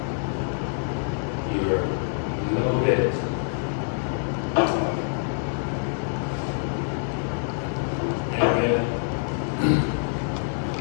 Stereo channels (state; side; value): silent; right; digital silence